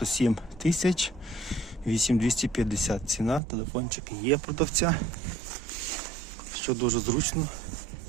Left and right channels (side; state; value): left; drops out; at 3.4 s